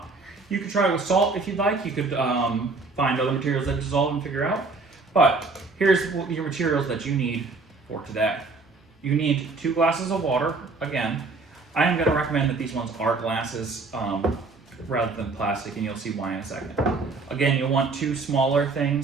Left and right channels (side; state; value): left; quieter; 3.9 dB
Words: You could try it with salt if you'd like. You could find other materials that dissolve and figure out. But here's your materials that you need for today. You need 2 glasses of water. Again, I am going to recommend that these ones are glasses rather than plastic, and you'll see why in a second. Again, you'll want 2 smaller